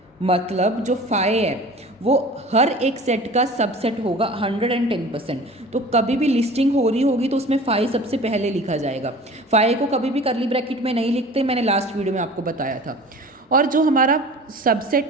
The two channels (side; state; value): both; normal; correlation 0.42